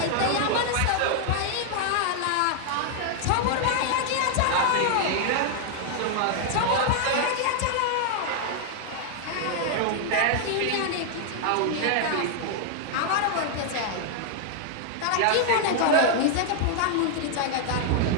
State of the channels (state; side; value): different; both; correlation 0.00